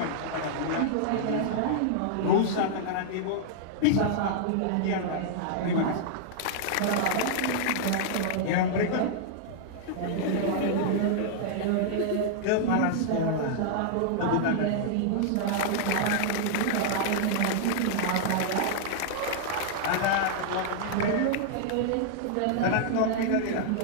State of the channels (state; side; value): different; both; correlation -0.01